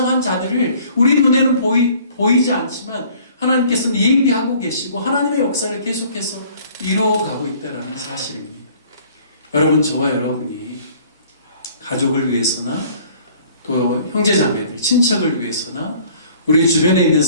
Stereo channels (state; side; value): inverted; both; correlation -0.54